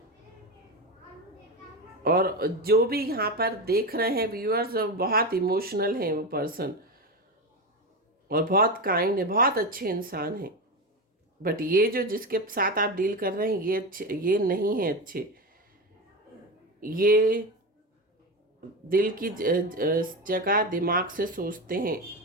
और जो भी यहाँ पर देख रहे हैं व्यूअर्स, बहुत इमोशनल हैं वो पर्सन, और बहुत काइंड है, बहुत अच्छे इंसान हैं। बट ये जो जिसके साथ आप डील कर रहे हैं ये अच्छे, ये नहीं है अच्छे। ये दिल की जगह दिमाग से सोचते हैं,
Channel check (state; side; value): normal; both; correlation 0.18